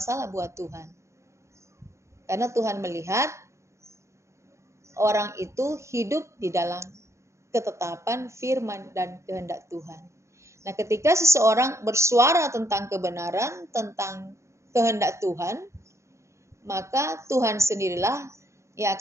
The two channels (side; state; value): left; late; 0.14 ms